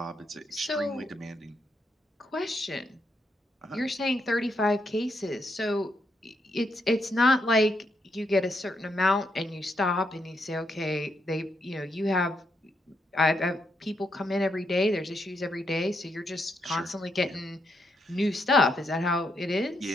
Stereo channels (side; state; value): both; normal; correlation 0.79